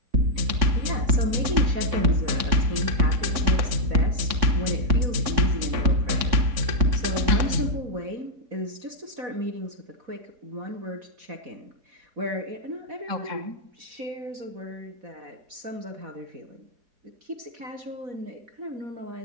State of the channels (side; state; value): left; late; 3.6 ms